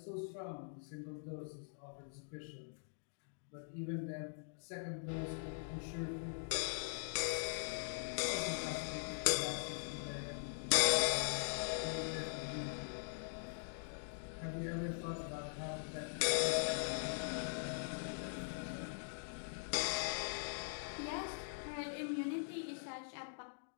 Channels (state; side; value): silent; right; digital silence